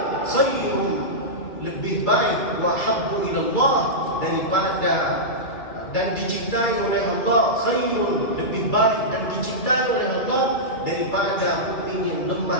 khairun, lebih baik, wa habbu ila Allah, daripada dan dicintai oleh Allah, khairun, lebih baik dan dicintai oleh Allah daripada mu'min yang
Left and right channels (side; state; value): right; late; 2.3 ms